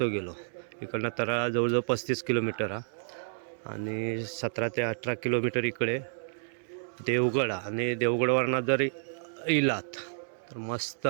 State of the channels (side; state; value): left; silent; digital silence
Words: गेलो. इकडनं तरळा जवळजवळ 35 किलोमीटर हा, आणि 17 ते 18 किलोमीटर इकडे देवगड. आणि देवगडवरनं जर इलात तर मस्त